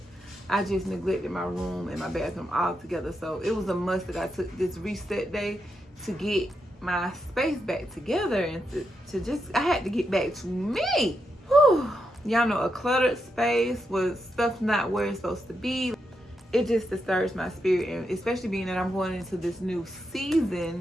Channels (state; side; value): normal; both; correlation 0.84